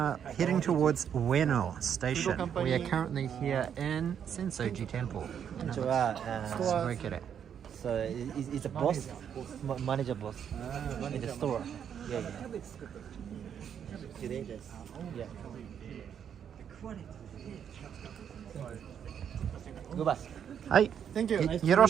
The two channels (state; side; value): quieter; left; 8.4 dB